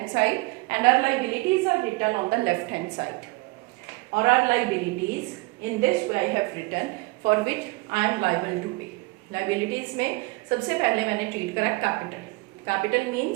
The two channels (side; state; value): left; quieter; 24.4 dB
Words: side and our liabilities are written on the left hand side. Or our liabilities, in this way I have written, for which I am liable to pay. Liabilities में सबसे पहले मैंने treat करा capital. Capital